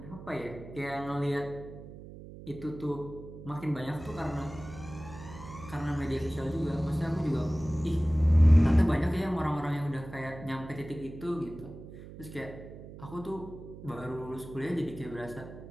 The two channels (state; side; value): noise; right; hum, 14 dB below the sound